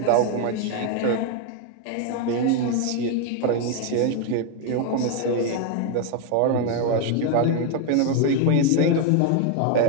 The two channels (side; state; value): both; different; correlation 0.01